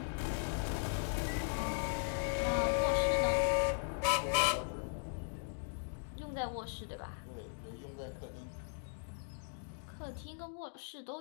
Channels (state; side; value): silent; right; digital silence